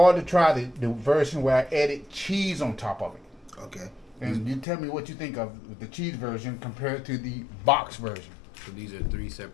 to try the version where I added cheese on top of it. Okay. And you tell me what you think of the cheese version compared to the box version. So these are 3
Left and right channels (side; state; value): right; drops out; at 4.7 s